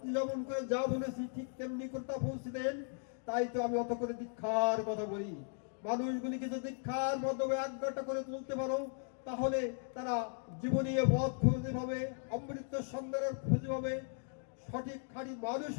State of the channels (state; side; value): silent; right; 53 dB below the other